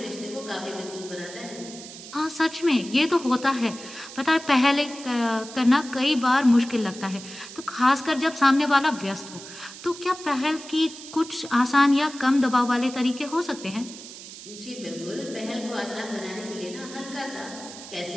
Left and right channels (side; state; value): right; noise; hiss, 14 dB below the sound